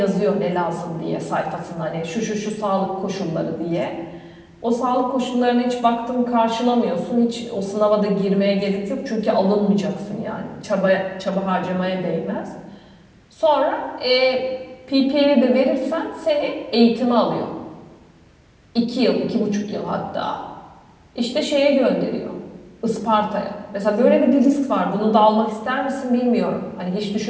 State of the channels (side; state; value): both; identical; correlation 1.00